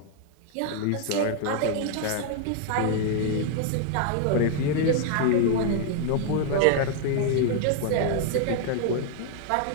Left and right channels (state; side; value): different; both; correlation 0.00